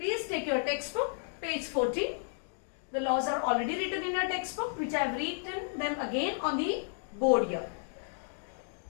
take your textbook, page 14. The laws are already written in your textbook, which I have written them again on the board here.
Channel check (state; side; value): silent; right; digital silence